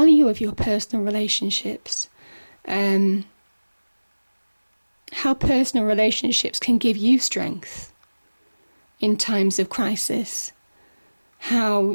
of your personal relationships, how personal relationships can give you strength in times of crisis, how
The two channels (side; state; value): both; inverted; correlation -1.00